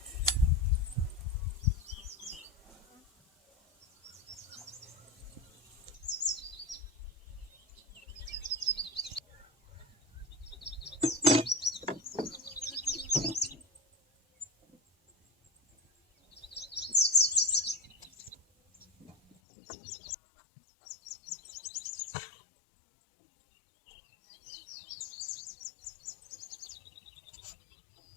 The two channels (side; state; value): right; drops out; at 19.4 s